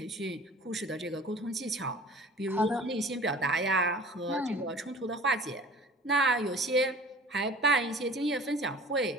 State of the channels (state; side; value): normal; both; correlation 0.45